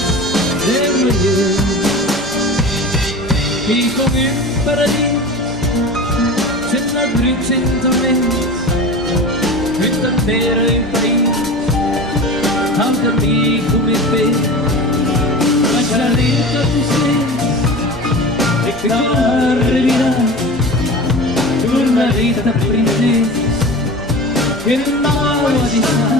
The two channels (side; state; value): both; normal; correlation 0.33